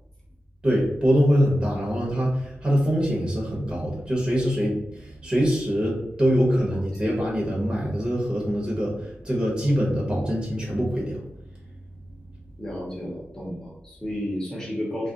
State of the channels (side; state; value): both; normal; correlation 0.93